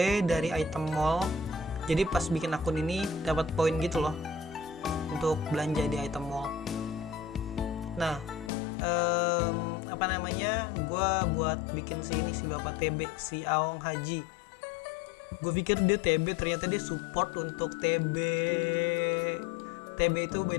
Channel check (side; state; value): right; drops out; at 8.5 s